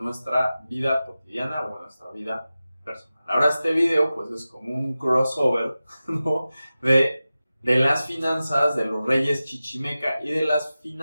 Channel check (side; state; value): both; inverted; correlation -0.95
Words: nuestra vida cotidiana o en nuestra vida personal. Ahora este video pues es como un crossover, ¿no? de las finanzas de los reyes chichimeca y de las